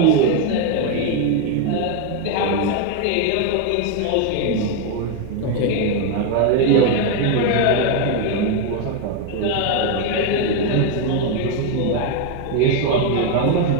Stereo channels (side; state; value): both; different; correlation 0.01